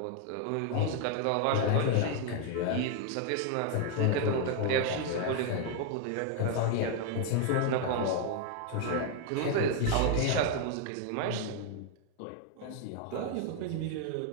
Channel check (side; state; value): both; different; correlation 0.00